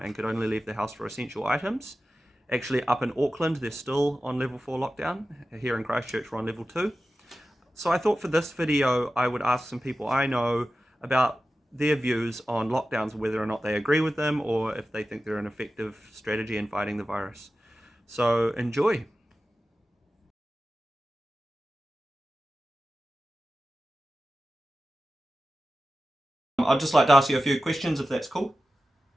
could only leave the house for essential items. Actually, up in Auckland, they're still on level 4 lockdown. Here in Christchurch, we're on level 2. So I thought for this video, I would ask some people I know about their views on lockdowns, whether or not they agree with them or if they think they're an effective strategy in fighting the virus. So enjoy. I'd just like to ask you a few questions if that's cool.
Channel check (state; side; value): normal; both; correlation 0.94